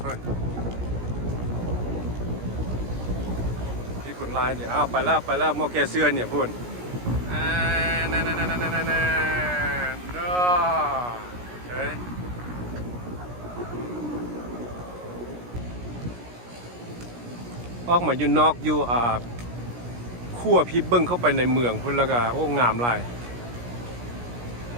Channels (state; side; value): late; left; 17 ms